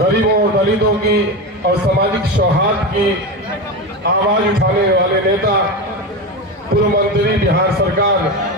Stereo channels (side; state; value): both; normal; correlation 0.19